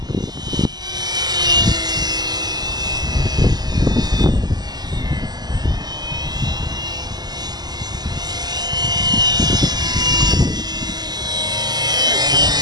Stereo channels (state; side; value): late; left; 0.20 ms